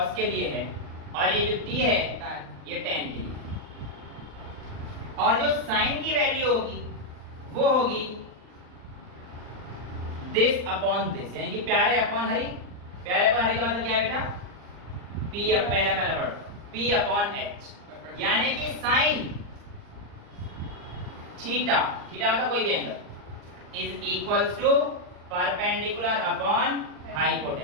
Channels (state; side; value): late; left; 39 ms